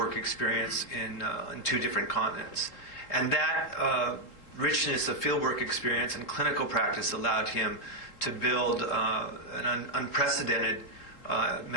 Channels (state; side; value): late; right; 3.6 ms